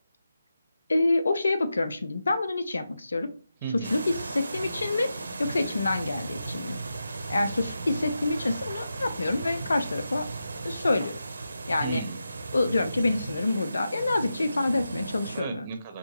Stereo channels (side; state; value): both; inverted; correlation -0.89